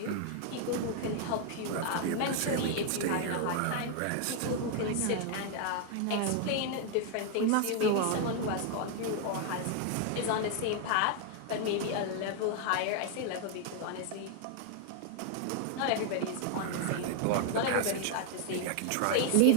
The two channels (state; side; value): different; both; correlation 0.00